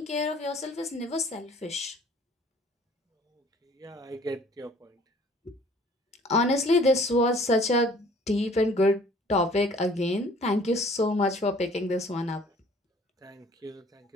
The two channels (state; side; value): normal; both; correlation 0.54